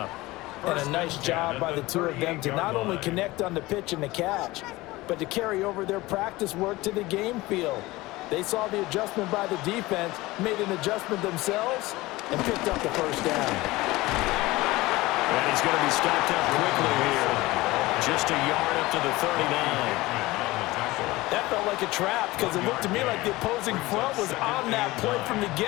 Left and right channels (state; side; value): quieter; right; 19.8 dB